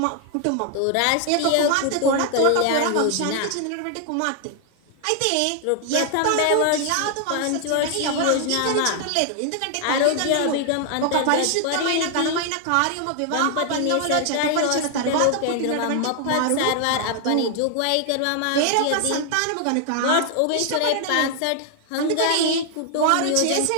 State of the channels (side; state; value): both; different; correlation 0.00